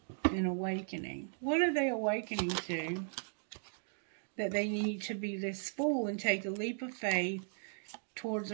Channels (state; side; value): silent; left; digital silence